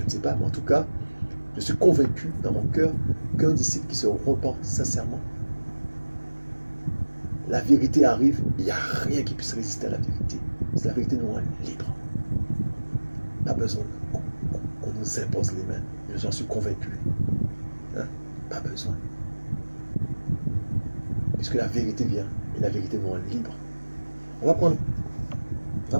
pas. Mais en tout cas, je suis convaincu dans mon cœur qu'un disciple qui se repent sincèrement, la vérité arrive, il n'y a rien qui puisse résister à la vérité. C'est la vérité nous rend libre. Pas besoin qu'on nous impose les mains. J'en suis convaincu. Hein? Pas besoin. Puisque la vérité vient et la vérité nous rend libre. On va prendre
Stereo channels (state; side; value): inverted; both; correlation -1.00